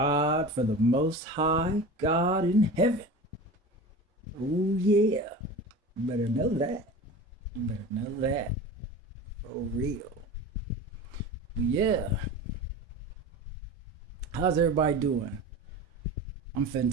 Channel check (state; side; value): normal; both; correlation 0.33